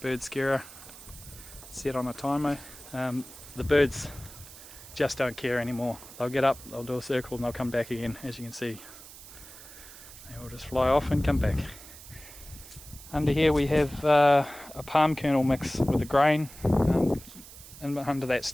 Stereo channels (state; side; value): noise; right; hiss, 17 dB below the sound